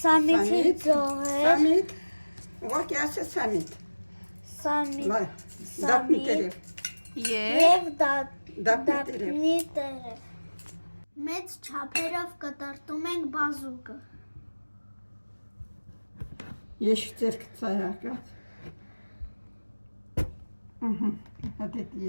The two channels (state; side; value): inverted; both; correlation -1.00